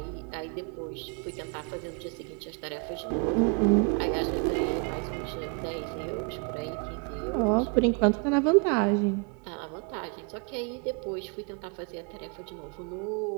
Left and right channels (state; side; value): quieter; left; 35.1 dB